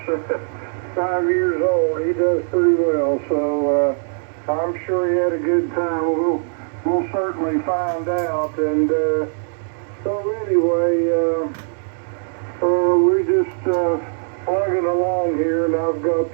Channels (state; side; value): silent; left; digital silence